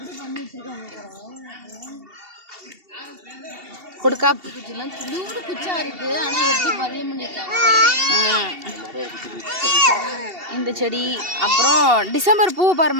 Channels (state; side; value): late; left; 2.7 ms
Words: கொடுக்கா குச்சா இருக்கு. ஆனா எப்படி பதியம் பண்ணிருக்காங்க இந்த செடி. அப்புறம் டிசம்பர் பூ